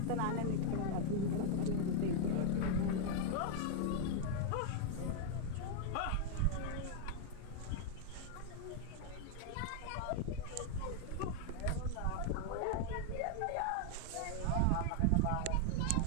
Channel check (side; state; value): both; different; correlation 0.00